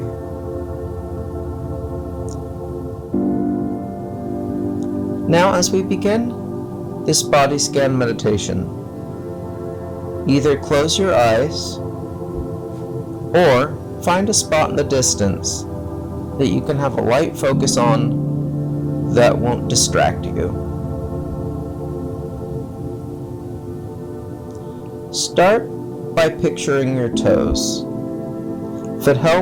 Now, as we begin this body scan meditation, either close your eyes or find a spot in the distance that you can have a light focus on that won't distract you. Start by picturing your toes. If it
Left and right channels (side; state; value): both; identical; correlation 1.00